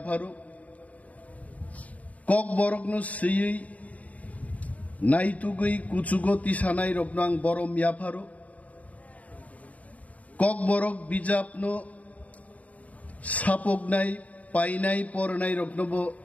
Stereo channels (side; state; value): right; late; 0.070 ms